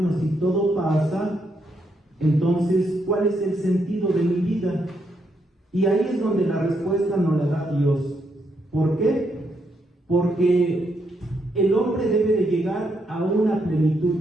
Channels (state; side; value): normal; both; correlation 0.78